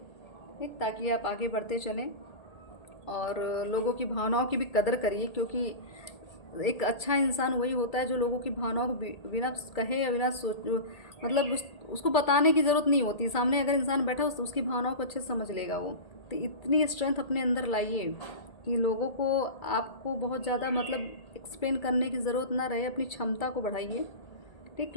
ठीक, ताकि आप आगे बढ़ते चलें। और लोगों की भावनाओं की भी कदर करिए, क्योंकि एक अच्छा इंसान वही होता है जो लोगों की भावनाओं को बिना कहे या बिना सोच मतलब उसको बताने की ज़रूरत नहीं होती। सामने अगर इंसान बैठा उसकी भावनाओं को अच्छे से समझ लेगा वो। तो इतनी स्ट्रेंथ अपने अंदर लाइए कि लोगों को आपको बहुत ज़्यादा मतलब एक्सप्लेन करने की ज़रूरत ना रहे, अपनी क्षमता को बढ़ाइए, ठीक।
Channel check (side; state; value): right; late; 1.8 ms